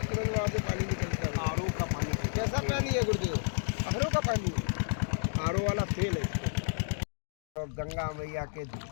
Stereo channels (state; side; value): silent; right; digital silence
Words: तुरंत वहाँ से पानी निकलता है। आरओ का पानी। कैसा पानी है गुरुदेव? आरओ का पानी, आरओ वाला तेल है। तो गंगा मैया के